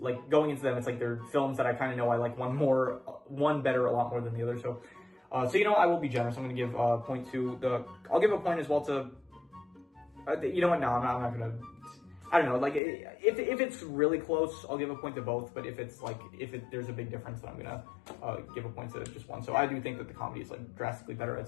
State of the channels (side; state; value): right; drops out; at 12.8 s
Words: going into them, it's like they're films that I kind of know I like one better a lot more than the other. So, I will be generous. I'm going to give a point to I'll give a point as well to, you know what, no, I'm not going to, I don't know, like if it's really close, I'll give a point to both, but if there's a big difference, then I'm going to give a point to just one. So I do think that the comedy is like drastically better.